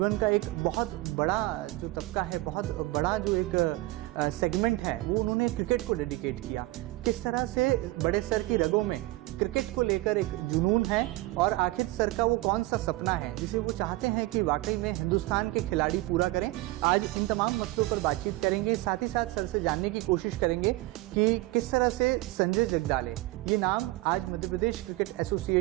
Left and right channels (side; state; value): left; quieter; 19.4 dB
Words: का एक बहुत बड़ा जो तबका है, बहुत बड़ा जो एक सेगमेंट है, वो उन्होंने क्रिकेट को डेडिकेट किया। किस तरह से बड़े सर की रगों में क्रिकेट को लेकर एक जुनून है और आखिर सर का वो कौन सा सपना है जिसे वो चाहते हैं कि वाकई में हिंदुस्तान के खिलाड़ी पूरा करें। आज इन तमाम मसलों पर बातचीत करेंगे, साथ ही साथ सर से जानने की कोशिश करेंगे कि किस तरह से संजय जगदाले, ये नाम आज मध्य प्रदेश क्रिकेट